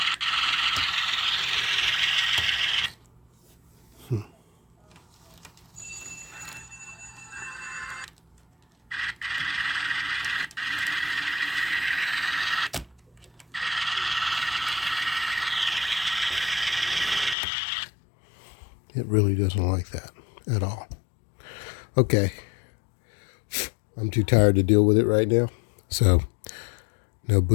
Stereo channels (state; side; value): drops out; right; at 17.4 s